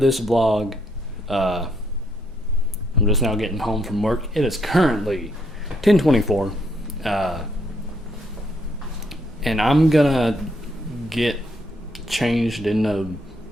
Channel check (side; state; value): both; normal; correlation 0.73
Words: this vlog. I'm just now getting home from work. It is currently 10:24, and I'm gonna get changed into